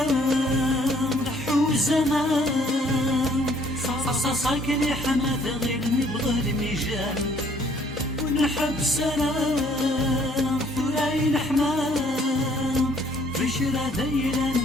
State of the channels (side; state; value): both; normal; correlation 0.62